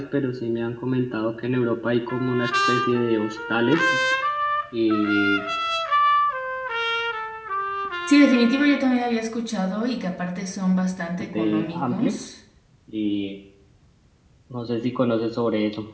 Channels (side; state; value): both; identical; correlation 1.00